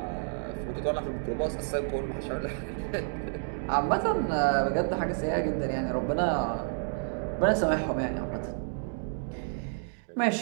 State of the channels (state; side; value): silent; left; digital silence